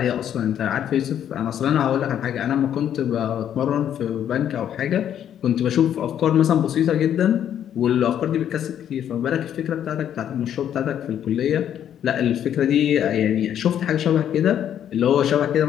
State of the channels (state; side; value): quieter; right; 9.9 dB